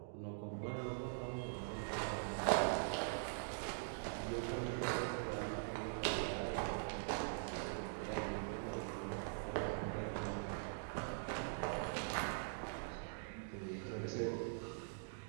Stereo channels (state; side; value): silent; left; digital silence